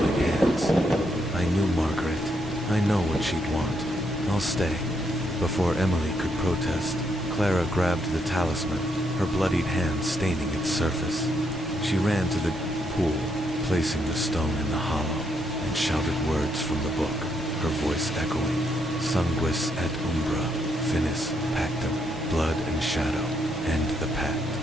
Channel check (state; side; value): normal; both; correlation 0.77